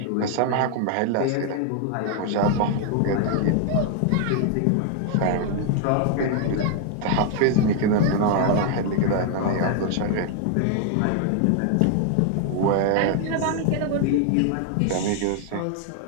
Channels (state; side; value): different; both; correlation 0.00